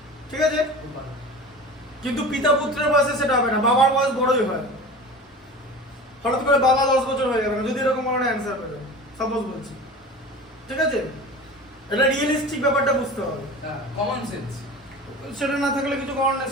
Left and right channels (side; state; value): both; normal; correlation 0.35